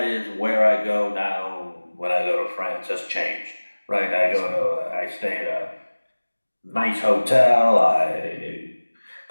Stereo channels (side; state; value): both; inverted; correlation -1.00